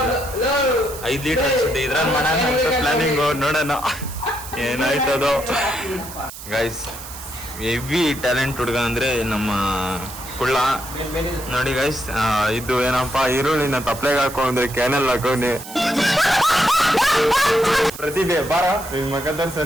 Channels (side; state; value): right; noise; hiss, 13 dB below the sound